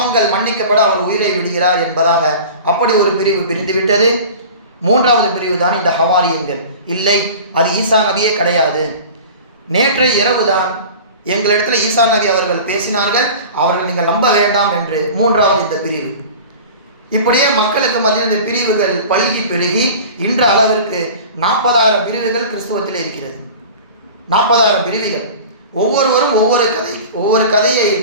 மன்னிக்கப்பட அவர் உயிரை விடுகிறார் என்பதாக அப்படி ஒரு பிரிவு பிரிந்துவிட்டது. மூன்றாவது பிரிவு தான் இந்த ஹவாரியன்கள். இல்லை, அது ஈசா நபியே கிடையாது, நேற்றைய இரவுதான் எங்களிடத்தில் ஈசா நபி அவர்கள் பேசினார்கள், அவர்கள் நீங்கள் நம்ப வேண்டாம் என்று மூன்றாவது இந்த பிரிவு. இப்படியே மக்களுக்கு மத்தியில் இந்த பிரிவுகள் பல்கி பெருகி இன்ற அளவிற்கு 40,000 பிரிவுகள் கிறிஸ்துவத்தில் இருக்கிறது. 40,000 பிரிவுகள். ஒவ்வொருவரும் ஒவ்வொரு கதையை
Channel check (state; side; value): inverted; both; correlation -0.38